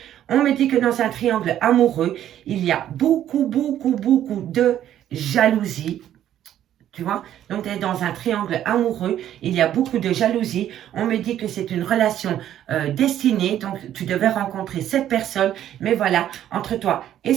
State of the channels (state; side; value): quieter; left; 11.4 dB